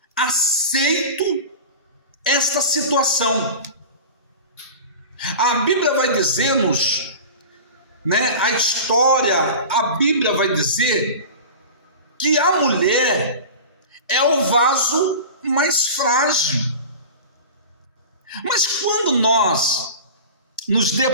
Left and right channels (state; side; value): inverted; both; correlation -0.33